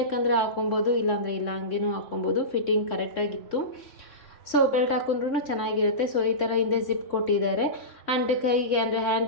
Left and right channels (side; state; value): right; late; 3.6 ms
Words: ಹಾಕೊಬೋದು, ಇಲ್ಲಾಂದರೆ ಇಲ್ಲ, ಹಂಗೇನೂ ಹಾಕೊಬೋದು. ಫಿಟ್ಟಿಂಗ್ ಕರೆಕ್ಟಾಗಿತ್ತು. ಸೊ ಬೆಲ್ಟ್ ಹಾಕೊಂಡ್ರೂ ಚೆನ್ನಾಗಿರುತ್ತೆ. ಸೊ ಈ ಥರ ಹಿಂದೆ ಜಿಪ್ ಕೊಟ್ಟಿದ್ದಾರೆ. ಆ್ಯಂಡ್ ಕೈಗೆ ಅಂದರೆ